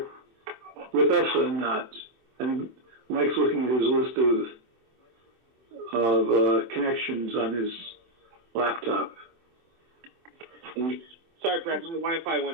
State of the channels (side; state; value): left; late; 24 ms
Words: with us or not? And Mike's looking at his list of connections on his laptop. Sorry, Brad, my Wi-Fi